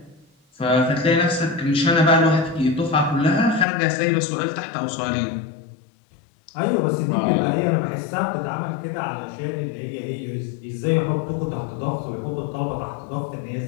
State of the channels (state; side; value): drops out; right; at 3.7 s